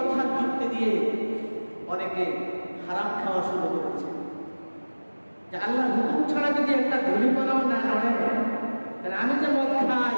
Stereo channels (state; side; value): inverted; both; correlation -1.00